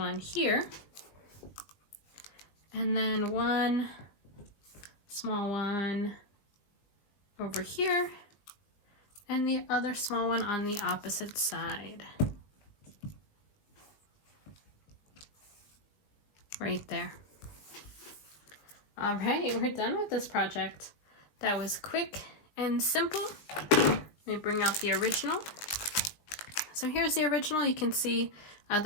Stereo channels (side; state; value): right; late; 19 ms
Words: here. And then 1 small one over here, and the other small one on the opposite side. right there. All right, we're done with this project. That was quick and simple. Let me bring out the original. So here's the original. You can see that